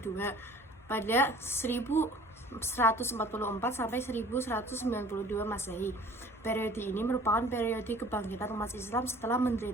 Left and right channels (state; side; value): normal; both; correlation 0.49